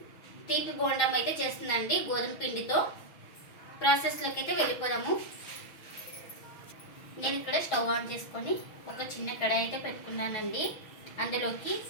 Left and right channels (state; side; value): late; right; 6.2 ms